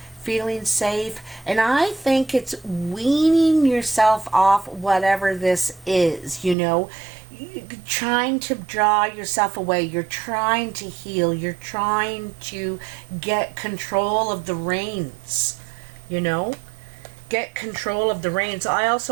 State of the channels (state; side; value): drops out; left; at 6.6 s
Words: feeling safe, and I think it's weaning yourself off whatever this is, you know. You're trying to draw yourself away. You're trying to heal. You're trying to get control of the reins, you know. Get control of the reins. I